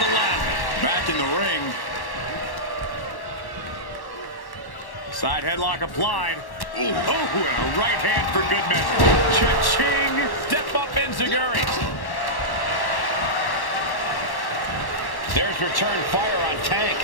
the ladder. Back in the ring. Side headlock applied. Ooh. Oh, and a right hand for good measure. Cha-ching. Step up enziguri. There's return fire on Tank.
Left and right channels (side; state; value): right; late; 1.1 ms